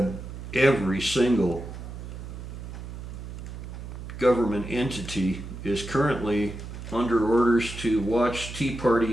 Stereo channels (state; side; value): noise; right; hum, 10 dB below the sound